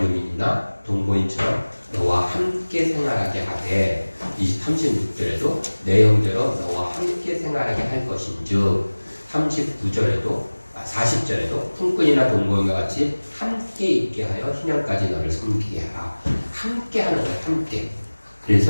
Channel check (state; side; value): inverted; both; correlation -1.00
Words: 동거인처럼 너와 함께 생활하게 하되 36절에도 내 형제로 너와 함께 생활하게 할 것인즉 40절에도 품꾼이나 동거인과 같이 함께 있게 하여 희년까지 너를 섬기게 하라. 함께 하는 거예요. 함께.